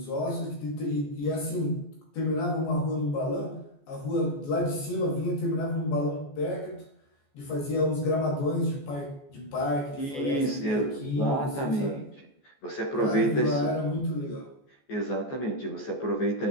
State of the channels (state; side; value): late; right; 14 ms